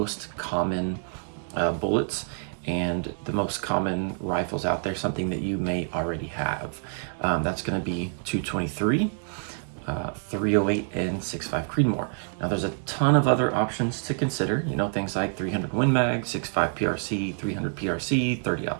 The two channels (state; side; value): silent; left; 60 dB below the other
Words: common bullets and the most common rifles out there, something that you may already have. That's going to be 223, 308, and 6.5 Creedmoor. Now there's a ton of other options to consider, things like 300 Win Mag, 6.5 PRC, 300 PRC,